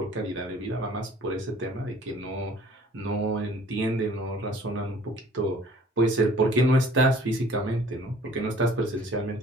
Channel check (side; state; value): both; normal; correlation 0.53